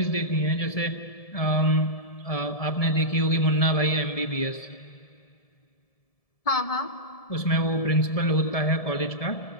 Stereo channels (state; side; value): late; right; 1.7 ms